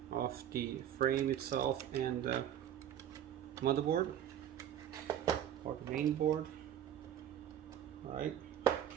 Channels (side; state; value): left; quieter; 10.5 dB